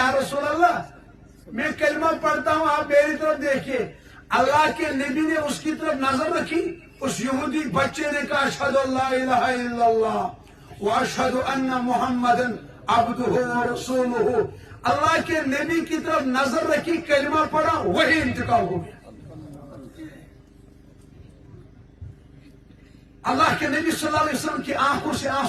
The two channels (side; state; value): both; identical; correlation 1.00